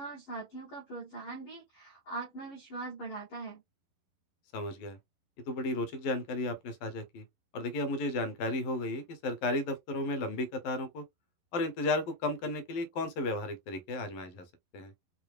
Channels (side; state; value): right; late; 11 ms